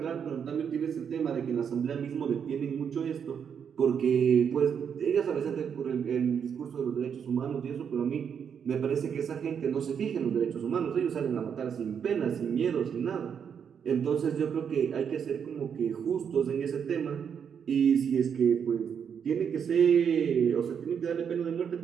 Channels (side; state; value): left; quieter; 7.5 dB